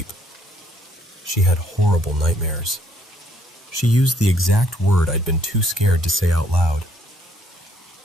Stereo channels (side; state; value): both; normal; correlation 0.67